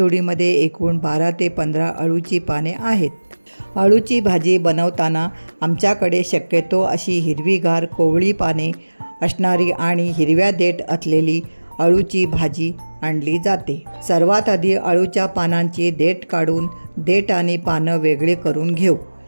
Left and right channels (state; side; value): inverted; both; correlation -1.00